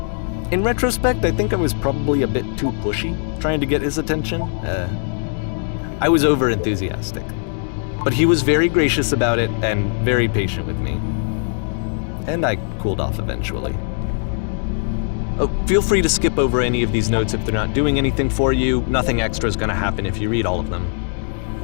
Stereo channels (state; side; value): silent; right; 57 dB below the other